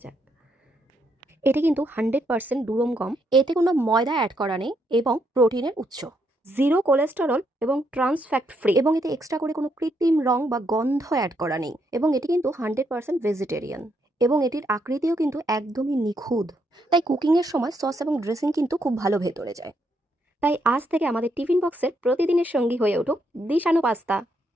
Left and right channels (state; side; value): normal; both; correlation 0.76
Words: যাক। এটি কিন্তু 100% দুরম গম, এতে কোনো ময়দা অ্যাড করা নেই এবং প্রোটিনের উৎস, জিরো কোলেস্টেরল এবং ট্রান্স ফ্যাট ফ্রি, এবং এতে এক্সট্রা করে কোনো কৃত্রিম রং বা গন্ধ অ্যাড করা নেই, এবং এটি কিন্তু 100% ভেজিটেরিয়ান, এবং এটির আকৃতিও কিন্তু একদমই নিখুঁত। তাই কুকিংয়ের সময় সস এবং ড্রেসিং কিন্তু খুব ভালো ভেতরে যায়। তাই আজ থেকে আমাদের টিফিন বক্সের প্রতিদিনের সঙ্গী হয়ে উঠুক দিশানো পাস্তা।